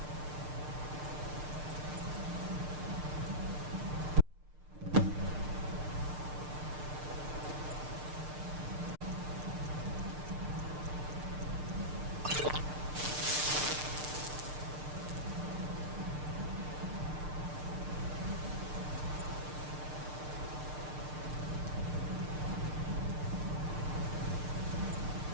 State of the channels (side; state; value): left; late; 6.6 ms